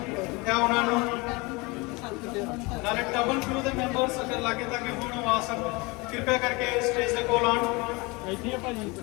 ਜਾਂ ਉਹਨਾਂ ਨੂੰ ਨਾਲੇ ਟਰਬਨ ਕਰੂ ਦੇ ਮੈਂਬਰਸ ਅਗਰ ਲਾਗੇ ਤੱਕ ਹੁਣ ਆ ਸਕਣ ਕਿਰਪਾ ਕਰਕੇ ਸਟੇਜ ਦੇ ਕੋਲ ਆਉਣ। ਇੱਥੇ ਆ ਭਾਜੀ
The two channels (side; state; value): right; quieter; 25.8 dB